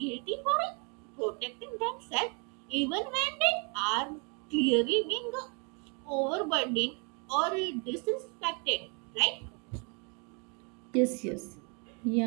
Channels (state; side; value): quieter; left; 35.0 dB